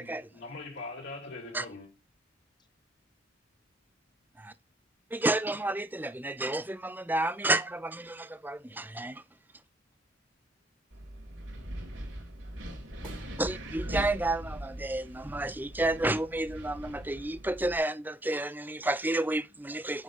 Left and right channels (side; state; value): both; normal; correlation 0.64